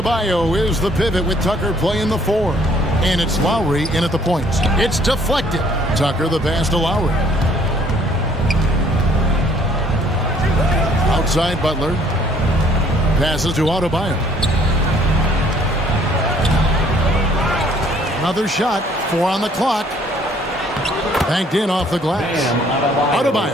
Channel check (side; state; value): both; normal; correlation 0.60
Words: is the pivot with Tucker playing the 4. And it's Lowry in at the points. It's deflected. Tucker the pass to Lowry. Outside Butler. Passes to Adebayo. Another shot. 4 on the clock. Banked in off the glass.